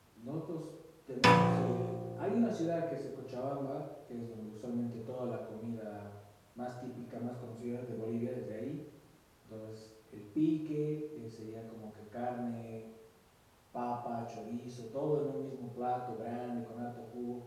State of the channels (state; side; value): identical; both; correlation 1.00